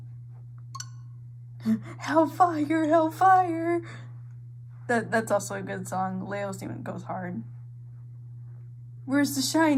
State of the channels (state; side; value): identical; both; correlation 1.00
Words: Hellfire, Hellfire! That's also a good song. Leo's Demon goes hard. Where's the